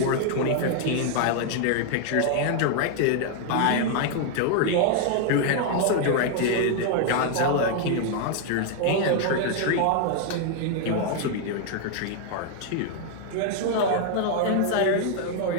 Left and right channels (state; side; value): different; both; correlation 0.00